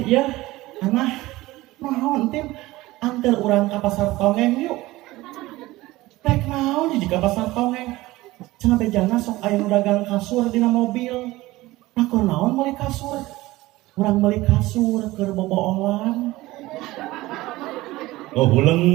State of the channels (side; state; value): left; quieter; 18.6 dB